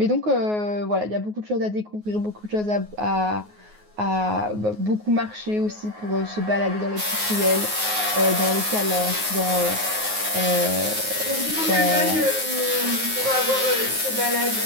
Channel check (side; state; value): left; late; 9.5 ms